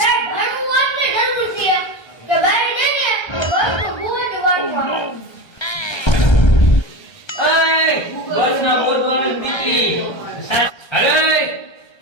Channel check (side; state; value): right; late; 1.3 ms